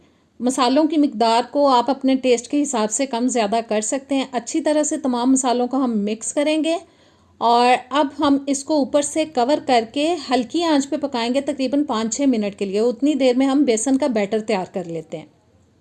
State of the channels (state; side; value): identical; both; correlation 1.00